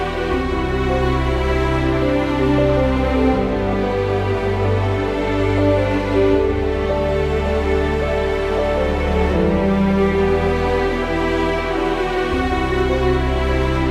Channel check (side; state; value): both; identical; correlation 1.00